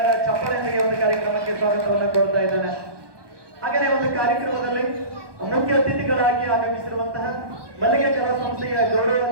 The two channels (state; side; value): late; left; 1.2 ms